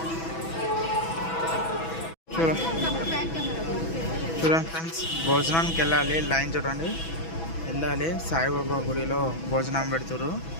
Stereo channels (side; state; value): right; late; 6.1 ms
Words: చూడండి ఫ్రెండ్స్, భోజనానికి వెళ్ళాలి. లైన్ చూడండి వెళ్ళాలి. సాయిబాబా గుడిలో భోజనం పెడతారు.